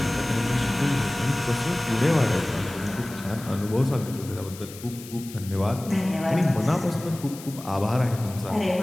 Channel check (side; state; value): left; noise; hiss, 16 dB below the sound